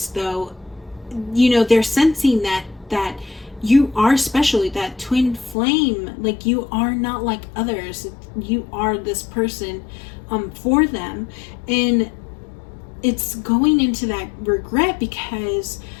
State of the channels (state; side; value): drops out; right; at 5.6 s